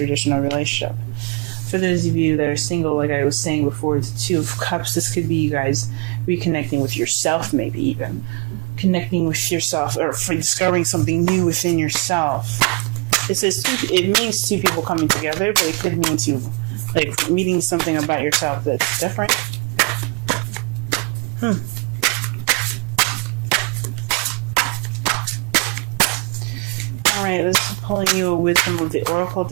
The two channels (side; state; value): left; quieter; 29.5 dB